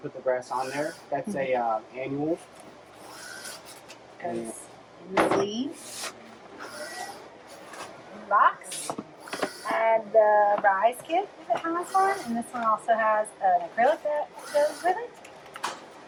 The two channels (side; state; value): both; identical; correlation 1.00